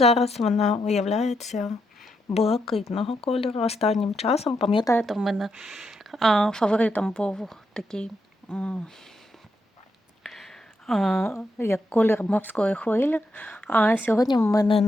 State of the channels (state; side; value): normal; both; correlation 0.81